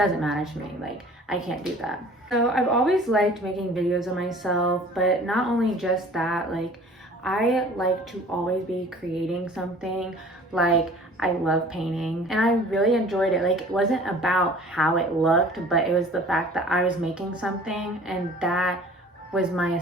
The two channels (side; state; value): both; normal; correlation 0.47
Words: matter to me. Like, I can't do that. So I've always liked making videos of myself, but not only just that, like, I like to always be creating something. Like, I love painting, and I really enjoyed it. Like, it wasn't about how it looked, but it was the fact that I was making something, and that was my